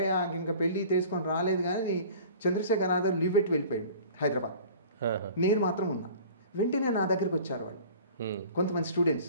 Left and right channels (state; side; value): inverted; both; correlation -0.44